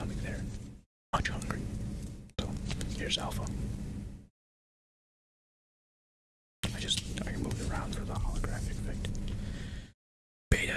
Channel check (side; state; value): both; identical; correlation 1.00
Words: there. Much hungry. So, here's Alpha. I moved it around for the holographic effect. Beta